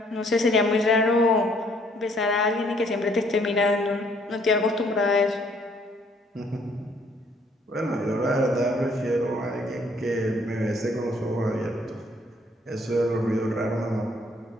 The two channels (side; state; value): both; normal; correlation 0.64